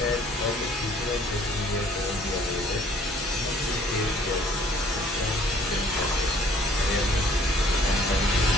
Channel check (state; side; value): normal; both; correlation 0.57